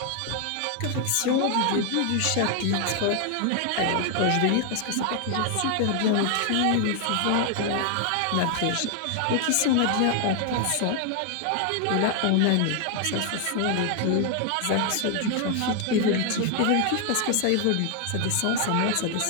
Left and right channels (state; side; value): different; both; correlation 0.00